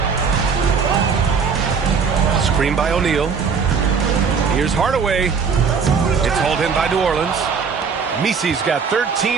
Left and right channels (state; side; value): quieter; left; 5.9 dB